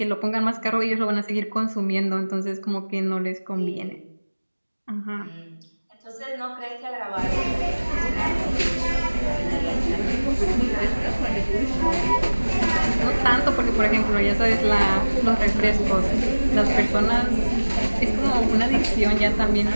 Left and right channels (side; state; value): both; inverted; correlation -1.00